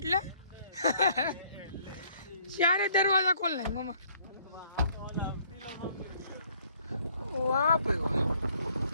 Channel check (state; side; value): inverted; both; correlation -0.62